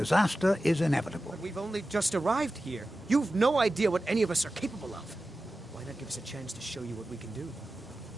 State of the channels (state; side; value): normal; both; correlation 0.94